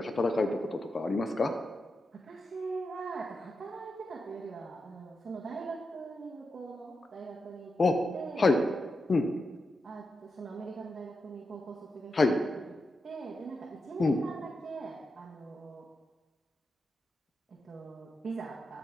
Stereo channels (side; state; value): both; normal; correlation 0.87